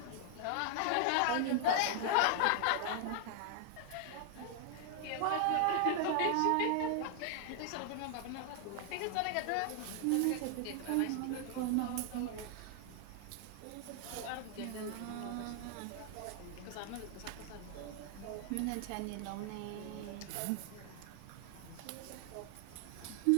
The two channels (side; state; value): both; different; correlation 0.00